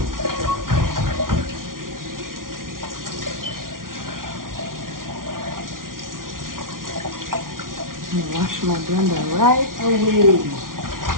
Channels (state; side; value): late; left; 0.90 ms